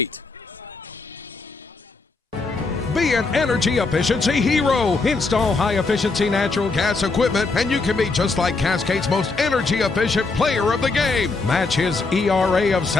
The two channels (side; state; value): right; quieter; 3.9 dB